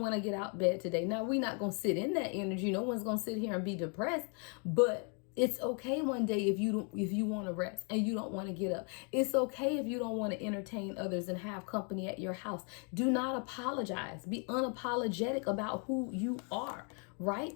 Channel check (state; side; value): quieter; right; 38.6 dB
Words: want to get out of bed today. Now, we're not going to sit in that energy. No one's going to sit here and be depressed, but it's okay one day if you want to rest and you don't want to get up. It's okay if you don't want to entertain others and have company at your house. Do not apologize. Be unapologetic about who you are,